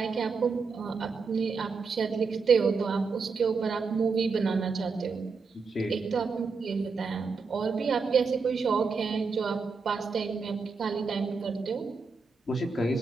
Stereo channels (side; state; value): left; quieter; 4.8 dB